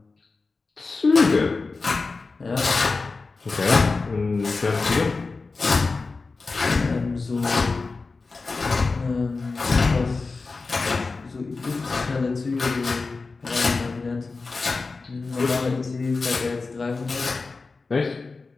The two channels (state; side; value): quieter; right; 4.0 dB